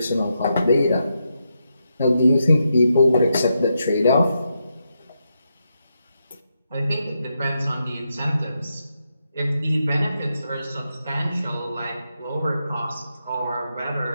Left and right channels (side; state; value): both; inverted; correlation -0.84